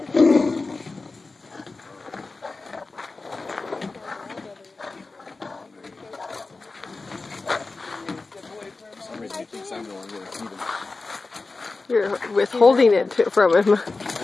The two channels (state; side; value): quieter; right; 3.7 dB